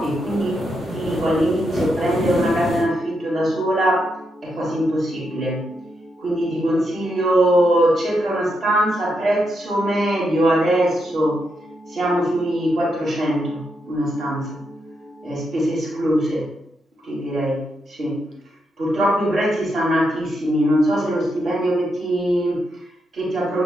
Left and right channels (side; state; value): both; normal; correlation 0.82